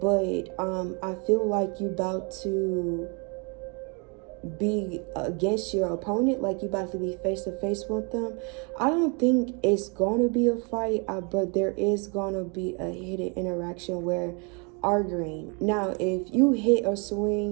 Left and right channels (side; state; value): left; quieter; 34.3 dB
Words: I feel like you about to be against your opponent, like you about to be face to face with them. I don't think it's gonna be a fight, but there is gonna be a hidden interaction where arguing. Now if you hit or